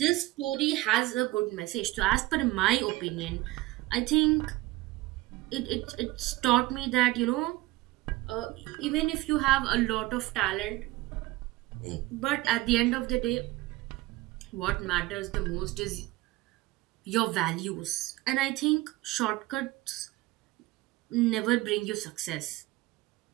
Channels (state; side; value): quieter; left; 18.9 dB